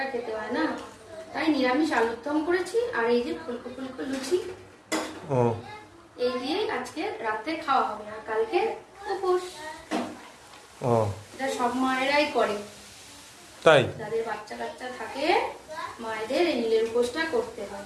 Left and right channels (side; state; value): both; identical; correlation 1.00